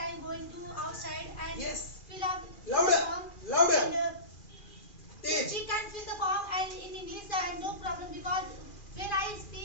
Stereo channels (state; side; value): late; right; 2.4 ms